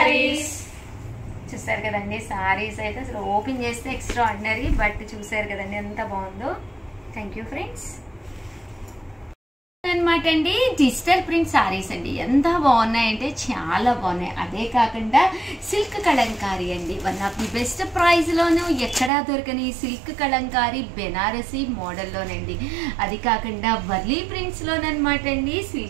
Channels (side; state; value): left; drops out; at 19.1 s